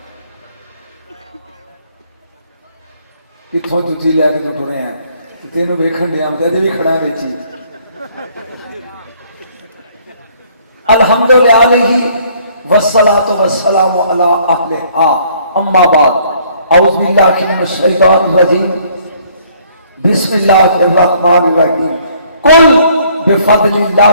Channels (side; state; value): both; inverted; correlation -0.62